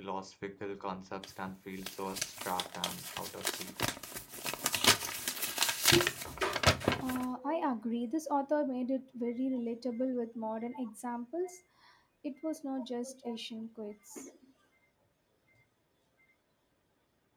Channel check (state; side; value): identical; both; correlation 1.00